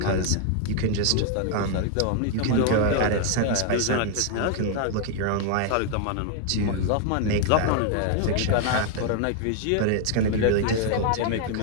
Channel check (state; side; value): different; both; correlation 0.00